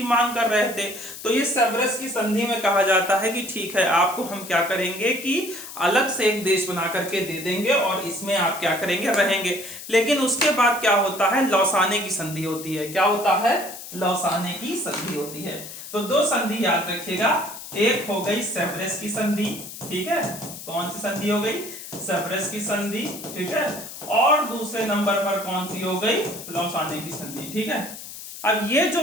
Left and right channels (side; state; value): left; noise; hiss, 12 dB below the sound